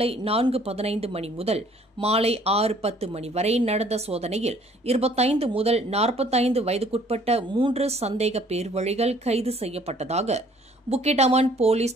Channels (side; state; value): both; normal; correlation 0.58